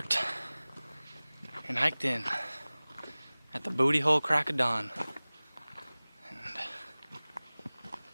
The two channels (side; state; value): both; inverted; correlation -0.99